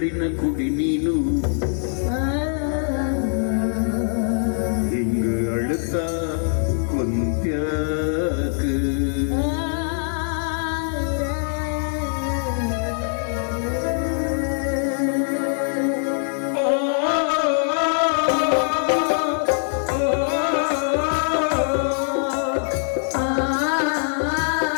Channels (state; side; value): silent; right; 61 dB below the other